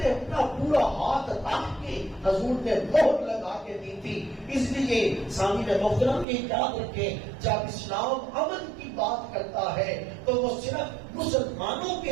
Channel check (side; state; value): left; drops out; at 6.2 s